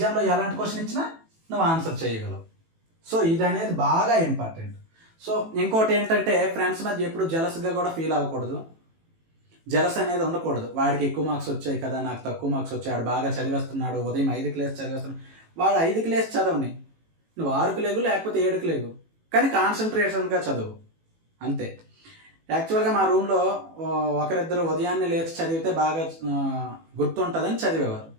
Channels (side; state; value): left; late; 18 ms